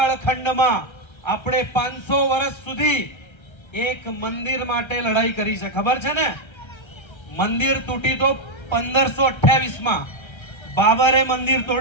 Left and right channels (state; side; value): late; right; 1.3 ms